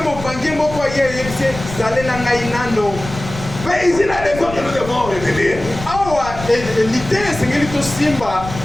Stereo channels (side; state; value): left; noise; rumble, 11 dB below the sound